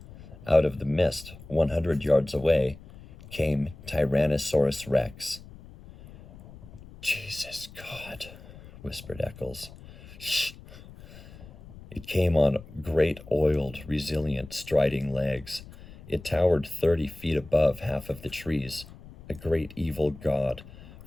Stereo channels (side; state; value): left; noise; rumble, 18 dB below the sound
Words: Out of the mist, 100 yards away, came Tyrannosaurus Rex. Jesus God, whispered Eccles. Shh. It came on great, oiled, resilient, striding legs. It towered 30 feet above half of the trees, a great evil god,